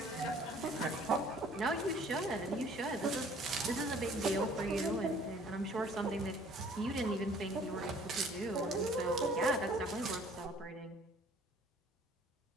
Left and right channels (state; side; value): normal; both; correlation 0.55